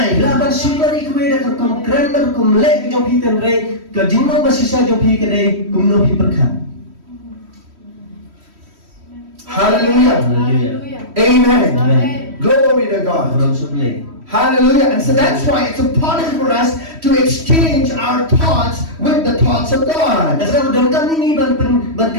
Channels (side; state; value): left; late; 3.1 ms